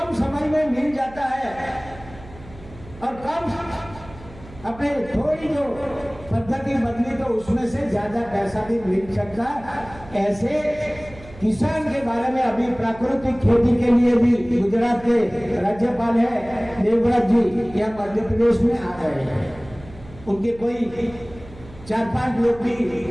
समय में मिल जाता है, और कम अपने थोड़ी जो पद्धति बदली तो उसमें से ज्यादा पैसा भी मिल सकता। ऐसे किसान के बारे में अभी प्राकृतिक खेती के लिए भी गुजरात के राज्यपाल है देवव्रत जी, यहाँ मध्य प्रदेश में आ गए हैं। उनके कोई 4-5 लोग भी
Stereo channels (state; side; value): noise; right; hum, 19 dB below the sound